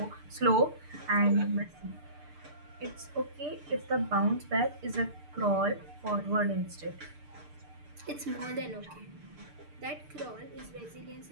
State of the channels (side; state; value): left; late; 6.7 ms